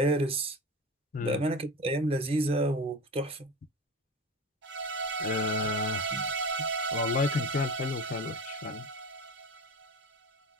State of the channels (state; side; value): normal; both; correlation 0.29